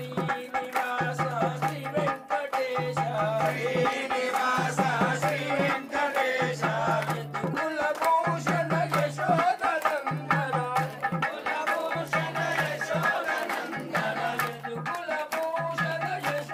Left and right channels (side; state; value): both; identical; correlation 1.00